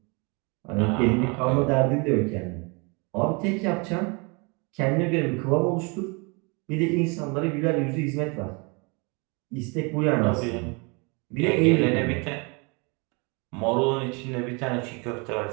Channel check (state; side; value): quieter; left; 30.8 dB